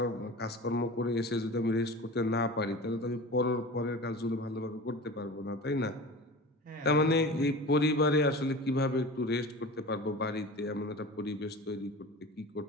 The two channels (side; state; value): both; normal; correlation 0.34